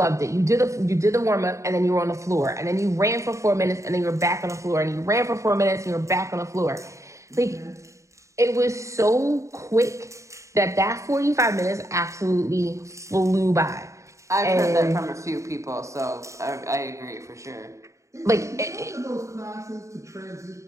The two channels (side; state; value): left; late; 0.15 ms